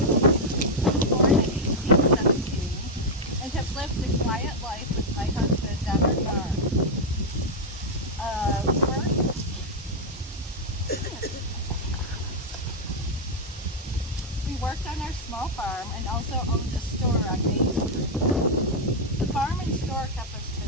Born in 1817, and have lived a quiet life with my husband on our farm. We worked on our small farm and also owned a store on Main Street. The farm and store kept us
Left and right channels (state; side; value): normal; both; correlation 0.00